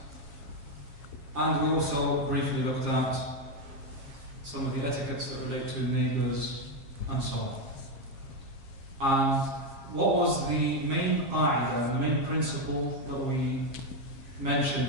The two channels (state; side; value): late; left; 7.5 ms